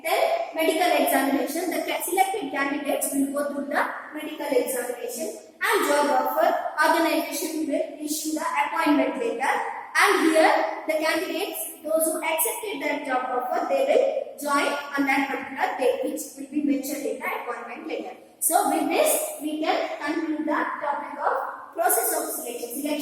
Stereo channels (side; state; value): both; identical; correlation 1.00